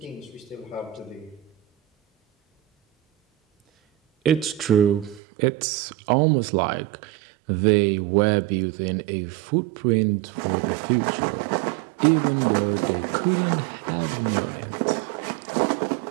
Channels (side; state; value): left; drops out; at 5.2 s